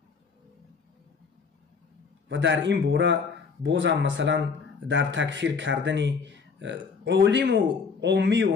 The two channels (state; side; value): quieter; right; 5.3 dB